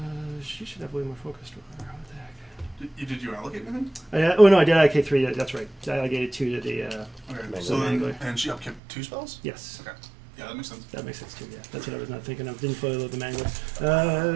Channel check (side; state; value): left; drops out; at 8.8 s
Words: She should have way more focused. What the heck? Did you allocate anything? Oh no, I did MK3. Yeah, that's right. I allocated 2 to the. Okay. Mangler. So then, Mangler. and she upkept 2 spells? Yes, Okay. Yeah, that makes sense. that makes sense too. Yeah, that's what I was not thinking of. Didn't fully load the